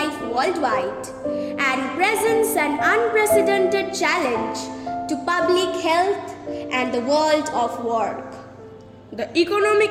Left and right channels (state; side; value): identical; both; correlation 1.00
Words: worldwide and presents an unprecedented challenge to public health and the world of work. The